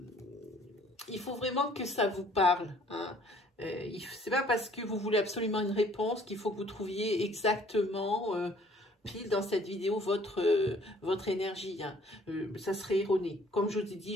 Il faut vraiment que ça vous parle. C'est pas parce que vous voulez absolument une réponse qu'il faut que vous trouviez exactement pile dans cette vidéo votre énergie. Ça serait erroné. Comme je vous ai dit,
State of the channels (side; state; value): both; normal; correlation 0.58